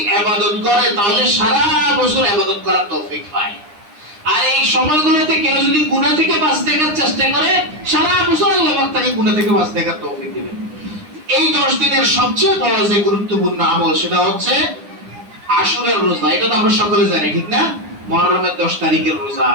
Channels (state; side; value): late; left; 9.8 ms